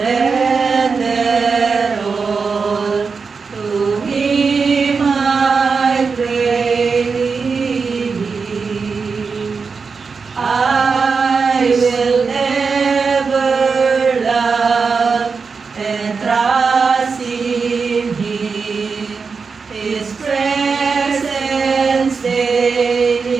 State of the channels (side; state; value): left; quieter; 5.0 dB